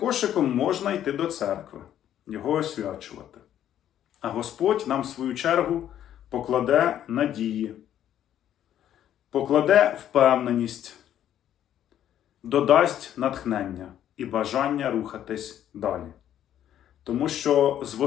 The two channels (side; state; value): right; quieter; 10.9 dB